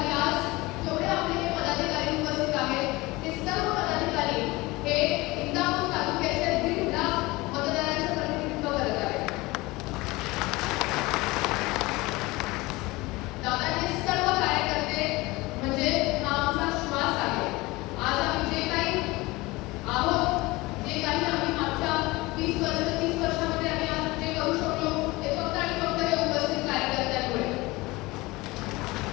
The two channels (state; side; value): quieter; right; 21.6 dB